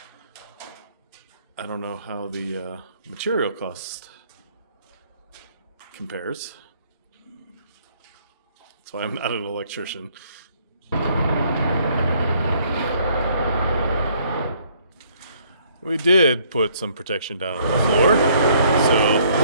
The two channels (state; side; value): inverted; both; correlation -0.64